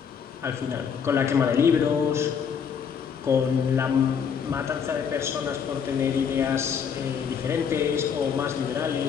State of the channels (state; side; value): quieter; right; 7.1 dB